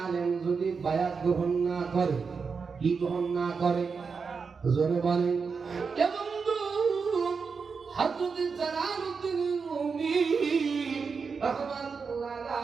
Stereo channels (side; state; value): left; quieter; 5.3 dB